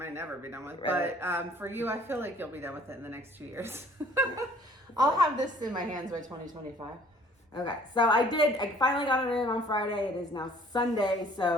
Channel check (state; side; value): normal; both; correlation 0.55